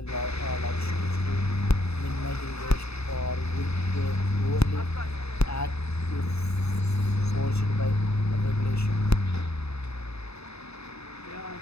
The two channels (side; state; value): right; late; 0.79 ms